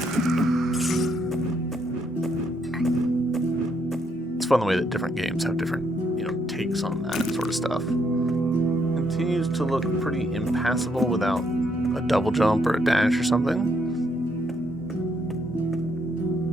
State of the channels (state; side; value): normal; both; correlation 0.73